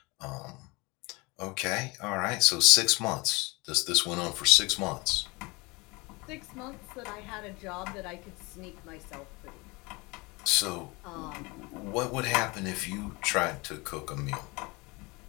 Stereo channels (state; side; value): quieter; right; 25.6 dB